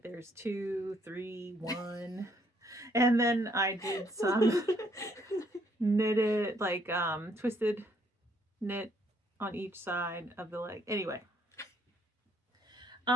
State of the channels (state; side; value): normal; both; correlation 0.68